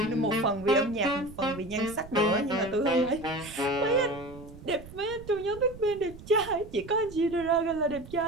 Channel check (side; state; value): right; noise; rumble, 17 dB below the sound